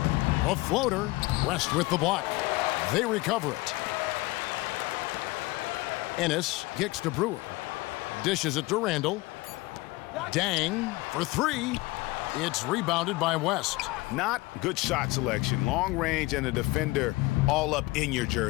A floater. West with the block. They recover it. Ennis kicks to Brewer. Dishes it to Randall. Dang for 3. It's rebounded by West. Not good shot selection. Long range and a defender all up in your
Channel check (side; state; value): right; quieter; 21.4 dB